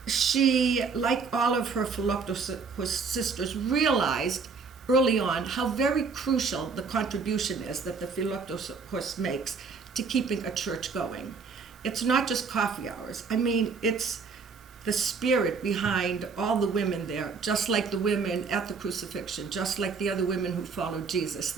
She, like all of her Philoptochos sisters, realized early on how very crucial the contribution is that the Philoptochos makes to keeping a church going. It's not just coffee hours. I mean, it's the spirit behind all the women there, just like the women at the crucifixion, just like the other women who followed Jesus,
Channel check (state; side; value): quieter; left; 5.1 dB